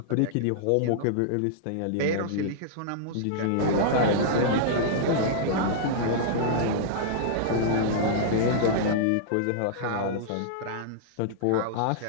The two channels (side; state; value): both; different; correlation -0.02